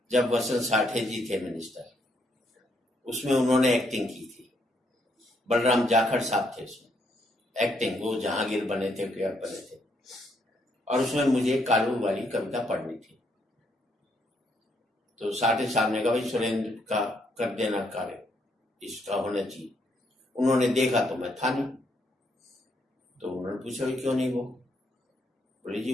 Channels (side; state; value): both; normal; correlation 0.73